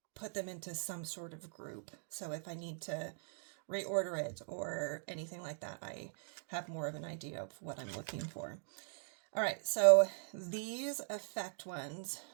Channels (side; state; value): left; silent; digital silence